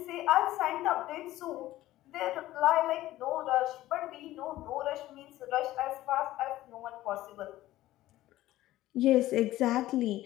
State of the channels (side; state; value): right; quieter; 15.6 dB